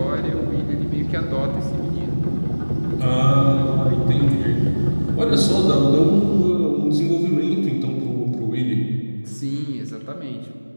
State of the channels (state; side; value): inverted; both; correlation -1.00